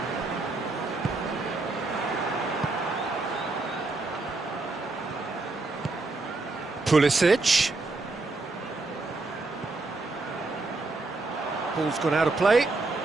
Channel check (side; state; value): left; quieter; 3.4 dB